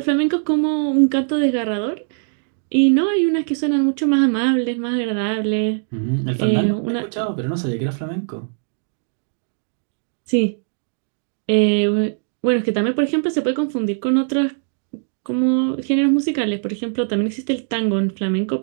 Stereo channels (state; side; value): silent; left; digital silence